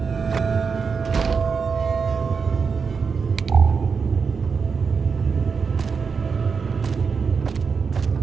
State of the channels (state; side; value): quieter; left; 5.5 dB